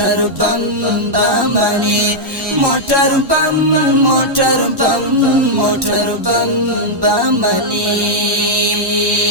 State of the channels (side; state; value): left; late; 1.1 ms